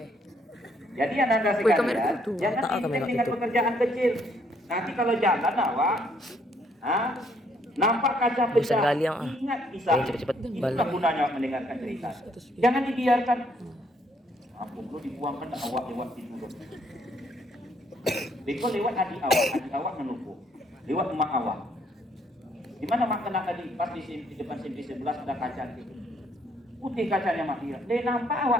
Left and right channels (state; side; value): normal; both; correlation 0.68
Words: Jadi Anda sekalian, jangan intens dengan pekerjaan kecil. Nanti kalau jalan awak, nampak kaca pecah, ingat kisah. Itulah gunanya mendengarkan cerita. Jangan dibiarkan. Aku perlu dibuangkan awak lewat situ. Beko lewat adik awak menunggu. Lewat emak awak. Di mana mak kena tadi? Pas di depan simpis 11 ada kaca gitu. Putih kacanya mak dia. Dia nampak